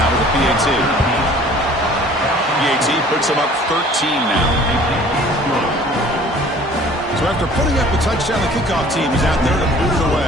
with the PAT. PAT puts them up 13 now. So after putting up a touchdown, the kickoff team is out there to boot it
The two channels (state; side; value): normal; both; correlation 0.51